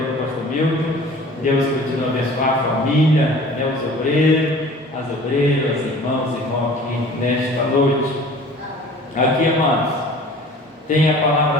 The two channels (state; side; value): normal; both; correlation 0.45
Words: pastor Milton. Deus continua a abençoar a família, né, os obreiros, as obreiras, irmãos e irmãos aqui nesta noite. Aqui, amados, tem a